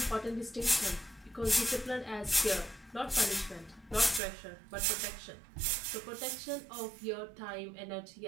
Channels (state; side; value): drops out; left; at 4.2 s